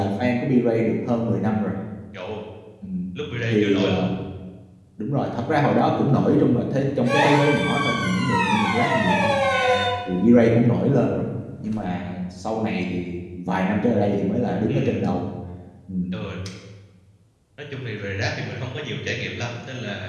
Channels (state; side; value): identical; both; correlation 1.00